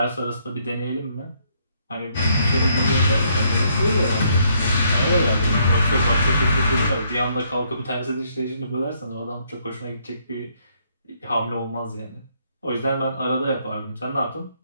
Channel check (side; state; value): both; inverted; correlation -0.70